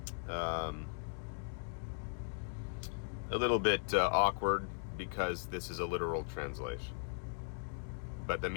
a little bit awkward because this is a literal translation. But the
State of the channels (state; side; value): silent; right; digital silence